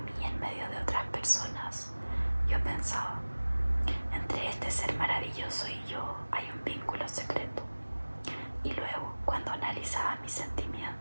en medio de otras personas, yo pensaba, entre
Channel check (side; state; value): both; inverted; correlation -1.00